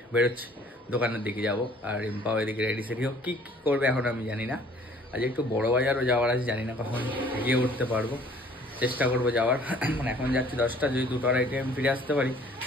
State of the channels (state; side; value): normal; both; correlation 0.55